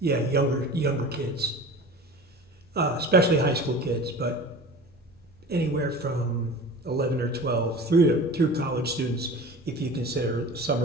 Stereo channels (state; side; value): normal; both; correlation 0.37